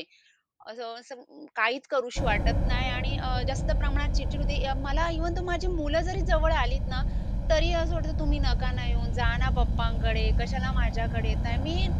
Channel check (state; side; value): identical; both; correlation 1.00